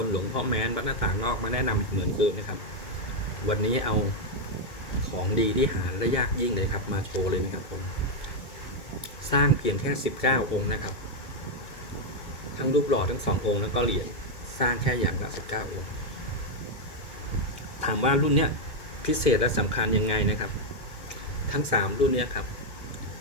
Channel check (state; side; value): late; right; 2.1 ms